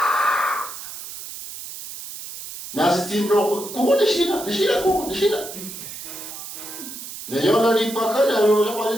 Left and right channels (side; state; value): right; noise; hiss, 11 dB below the sound